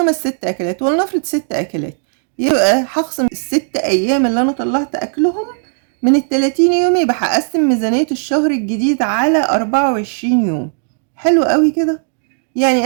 اكلات، ولنفرض 6 اكلات، يبقى هخصم ال6 ايام اللي انا طلعت اكلهم من ال30 يوم، يبقى هقسم ميزانية الشهر الجديد على 24 يوم. حلو قوي كده،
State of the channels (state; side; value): silent; left; digital silence